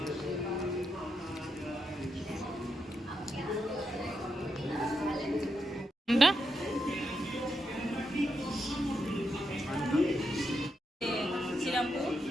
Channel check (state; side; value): normal; both; correlation 0.84